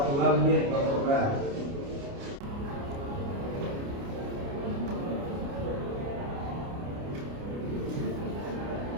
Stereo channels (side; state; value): left; late; 29 ms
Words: 2 menit berubah.